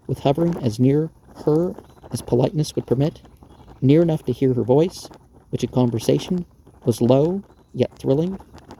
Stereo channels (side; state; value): both; identical; correlation 1.00